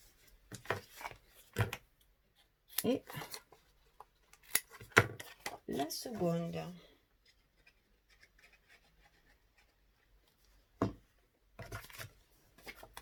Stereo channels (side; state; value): both; identical; correlation 1.00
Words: Et la seconde.